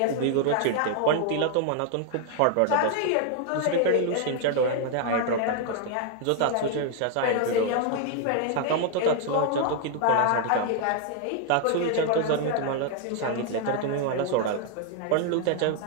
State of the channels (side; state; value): both; different; correlation 0.00